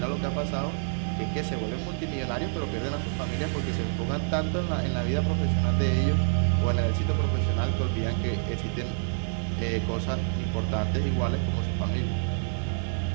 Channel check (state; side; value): silent; left; digital silence